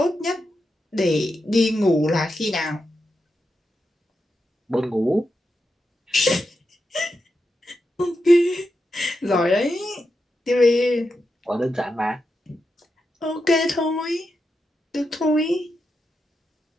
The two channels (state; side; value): normal; both; correlation 0.87